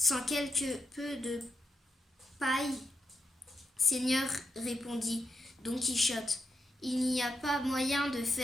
quelque peu de paille. Seigneur, répondit Don Quichotte, il n'y a pas moyen de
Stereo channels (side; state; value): both; normal; correlation 0.82